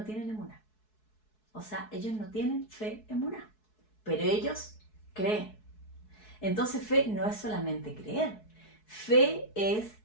tienen emuná. O sea, ellos no tienen fe emuná. Pero ellos creen. Entonces fe no es solamente creer. Fe es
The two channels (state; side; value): late; right; 4.7 ms